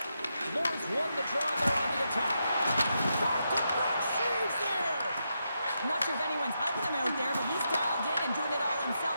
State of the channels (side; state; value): both; inverted; correlation -0.84